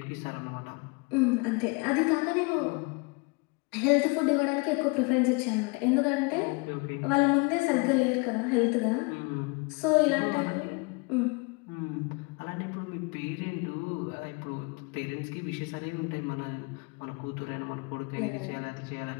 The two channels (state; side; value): quieter; right; 29.9 dB